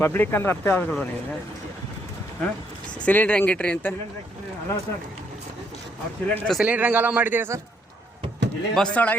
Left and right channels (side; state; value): both; normal; correlation 0.72